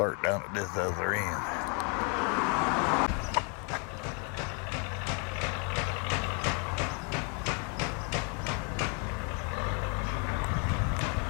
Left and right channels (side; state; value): right; quieter; 36.7 dB